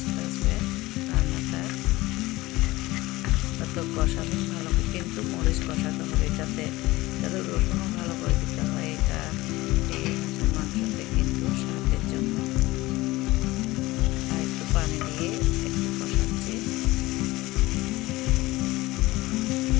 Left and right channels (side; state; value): right; quieter; 19.5 dB